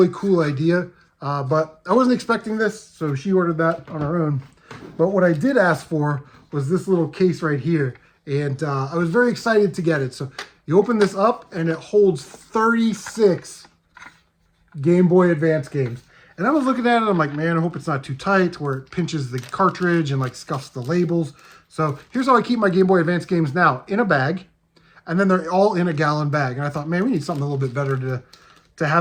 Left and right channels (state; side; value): identical; both; correlation 1.00